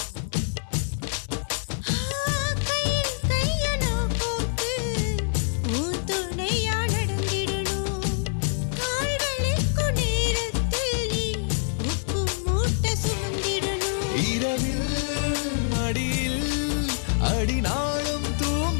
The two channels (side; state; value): right; silent; 61 dB below the other